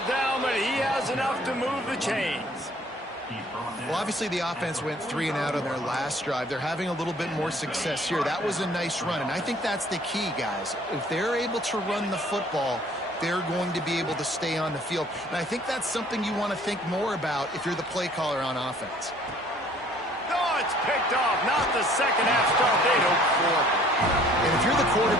down, but he has enough to move the chains. Well, obviously the offense went 3 and out on their last drive. They're having a little bit more success here. That was a nice run, and I think that's the key, guys. If they're able to run the football, they're going to be able to stay on the field. And I think that's something you want to think more about if you're the play caller on offense. Oh, it's picked off. Not the second half start they'd hoped for. And if you're the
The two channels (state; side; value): normal; both; correlation 0.56